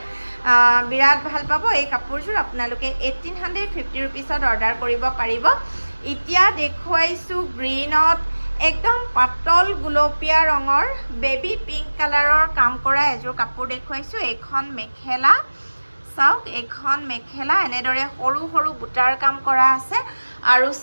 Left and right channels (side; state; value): both; inverted; correlation -1.00